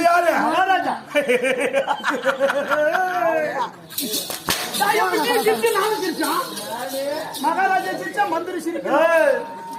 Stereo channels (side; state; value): both; identical; correlation 1.00